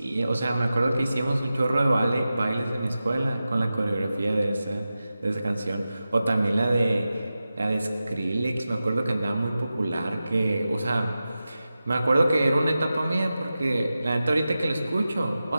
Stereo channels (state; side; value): inverted; both; correlation -0.93